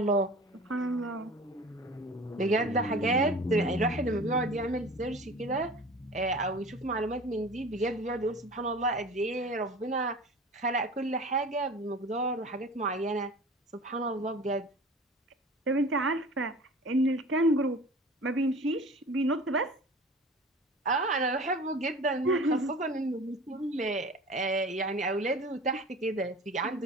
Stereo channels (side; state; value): both; normal; correlation 0.39